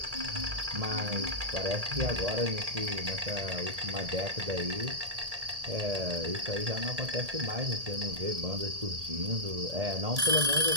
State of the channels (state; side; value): late; left; 1.8 ms